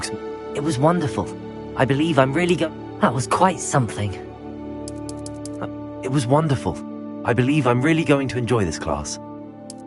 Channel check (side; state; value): both; identical; correlation 1.00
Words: It was wonderful. I believe I'm really That was quite something. It was wonderful. I believe I'm really going to enjoy this class.